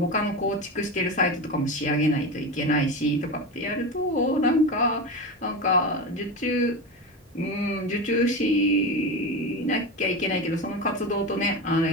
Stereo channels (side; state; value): both; normal; correlation 0.22